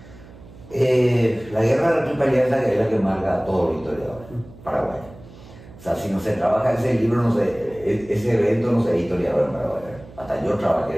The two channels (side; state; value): right; noise; hum, 20 dB below the sound